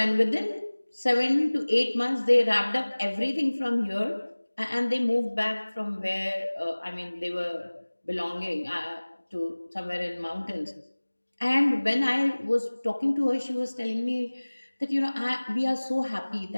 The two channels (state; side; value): inverted; both; correlation -1.00